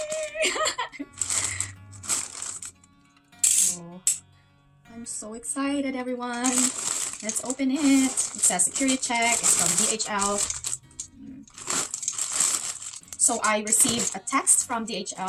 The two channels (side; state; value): both; identical; correlation 1.00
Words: Oh, I'm so excited, everyone. Let's open it. It says security check. It's from DHL. So I received a text from